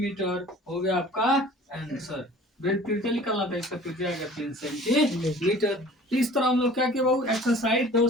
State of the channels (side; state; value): both; normal; correlation 0.47